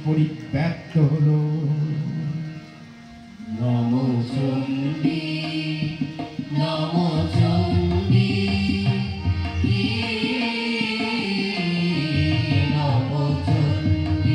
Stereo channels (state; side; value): identical; both; correlation 1.00